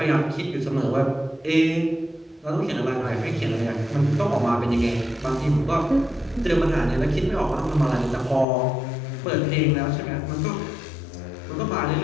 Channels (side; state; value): right; drops out; at 8.5 s